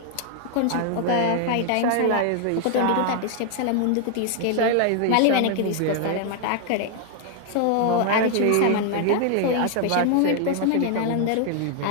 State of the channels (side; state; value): both; different; correlation 0.00